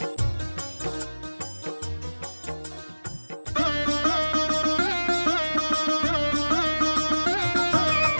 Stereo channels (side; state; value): both; inverted; correlation -1.00